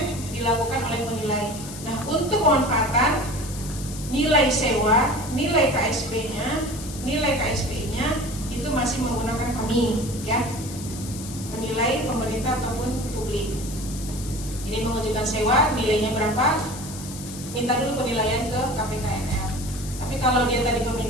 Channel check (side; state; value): left; noise; hiss, 12 dB below the sound